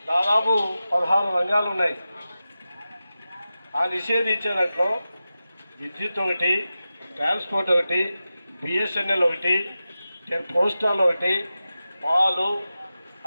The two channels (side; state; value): both; inverted; correlation -0.93